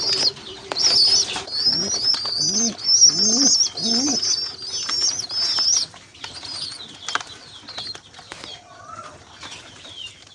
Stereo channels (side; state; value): both; identical; correlation 1.00